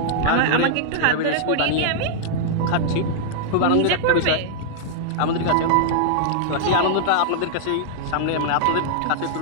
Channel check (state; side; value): different; both; correlation -0.01